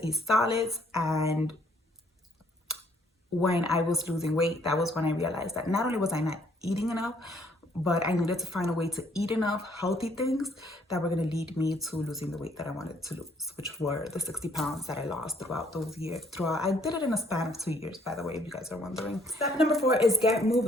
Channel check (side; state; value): both; normal; correlation 0.64